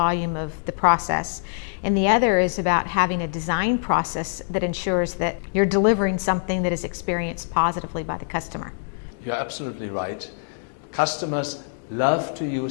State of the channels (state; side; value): silent; right; digital silence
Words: of the process, and the other is about having a design process that ensures that you're delivering something that is experienced positively by the customer. You're absolutely right. Customers love to